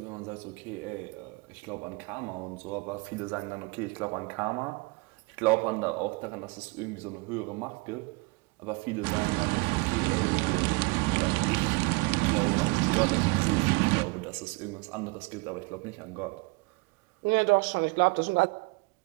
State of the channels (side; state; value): left; quieter; 28.0 dB